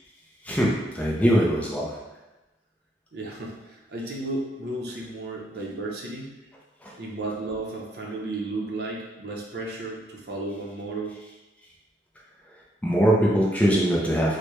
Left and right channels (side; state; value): both; normal; correlation 0.75